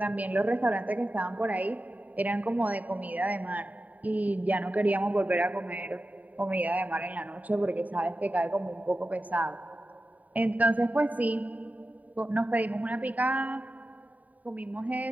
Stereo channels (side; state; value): left; late; 0.073 ms